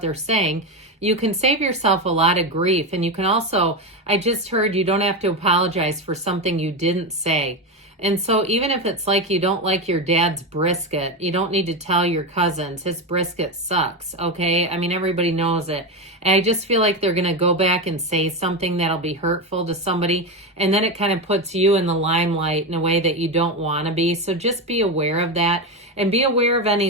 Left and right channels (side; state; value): both; normal; correlation 0.15